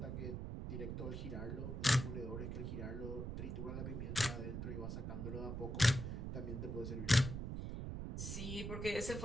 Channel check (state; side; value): noise; right; rumble, 4 dB below the sound